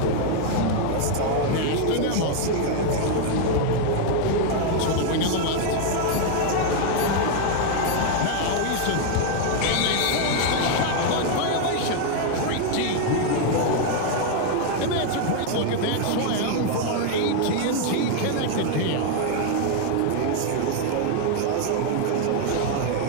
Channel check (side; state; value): both; different; correlation 0.00